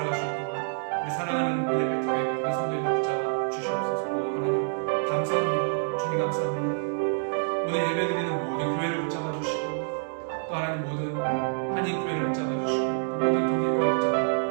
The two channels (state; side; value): silent; left; digital silence